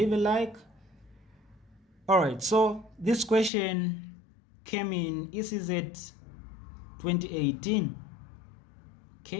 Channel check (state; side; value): drops out; right; at 3.5 s